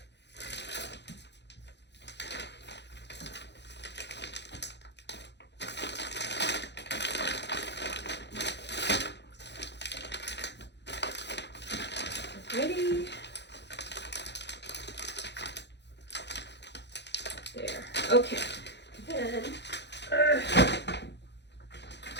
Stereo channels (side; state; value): right; late; 0.50 ms